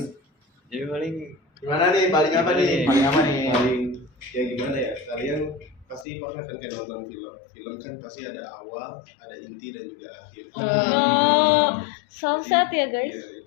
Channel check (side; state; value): right; drops out; at 6.1 s